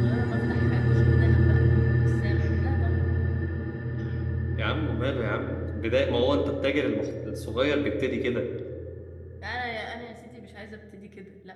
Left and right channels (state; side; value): identical; both; correlation 1.00